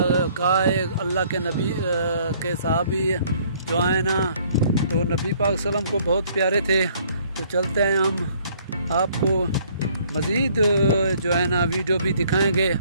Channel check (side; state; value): both; inverted; correlation -0.61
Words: है, अल्लाह के नबी के सहाबी जो है ना, तो नबी पाक सल्लम को बहुत प्यारे थे। तो चलते हैं हम आपको मज़ीद जो है ना वीडियो भी दिखाएंगे,